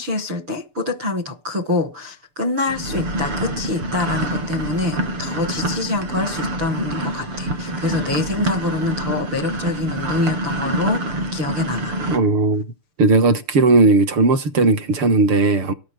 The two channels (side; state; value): left; late; 6.8 ms